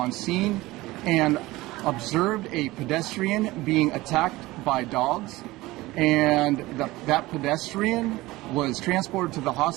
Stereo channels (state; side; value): quieter; left; 19.3 dB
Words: scene and observed a pedestrian being attacked by dogs, and that pedestrian was transported to the